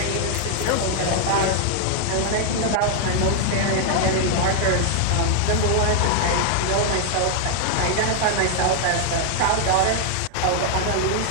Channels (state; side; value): different; both; correlation 0.00